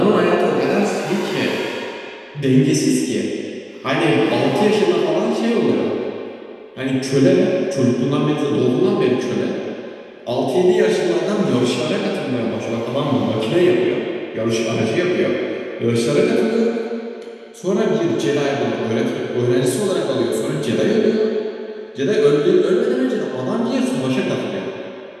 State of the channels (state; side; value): identical; both; correlation 1.00